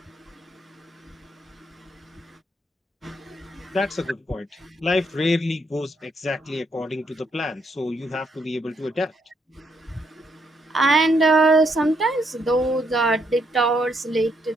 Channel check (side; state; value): both; normal; correlation 0.75